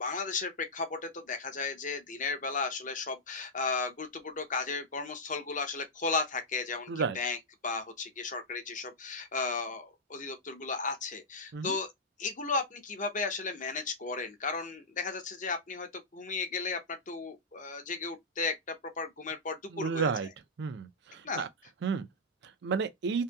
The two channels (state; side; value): normal; both; correlation -0.08